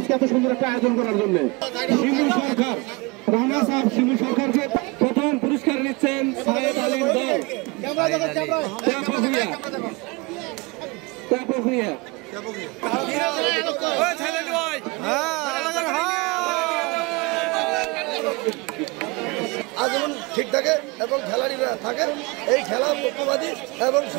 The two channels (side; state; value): left; quieter; 26.2 dB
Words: এত সুন্দর একটা আয়োজন করার জন্য। শিমু সরকার, রানা সাহেব শিমু সরকার যে প্রথম পুরস্কার নিচ্ছেন সাহেদ আলীম দল, আজীবন ঠিক থাকে এবং খেলাড়িরা থাকে এই খেলার পক্ষপাতী এবং